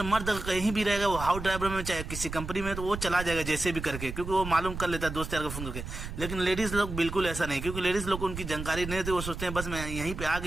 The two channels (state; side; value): noise; right; rumble, 8 dB below the sound